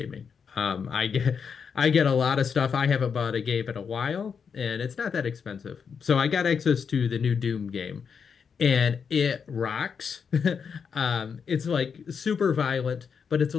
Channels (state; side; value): quieter; right; 6.4 dB